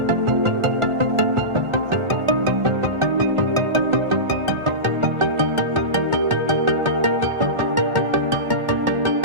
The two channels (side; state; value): left; late; 1.4 ms